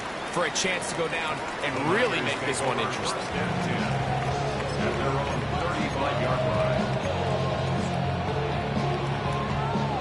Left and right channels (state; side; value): identical; both; correlation 1.00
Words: for a chance to go down and really make this one interesting? At their own 35-yard line.